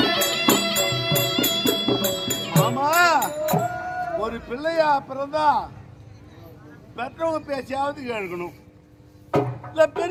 மாமா ஒரு பிள்ளையா பிறந்தா பெற்றவங்க பேசியாவது கேட்கணும். இல்ல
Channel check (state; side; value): identical; both; correlation 1.00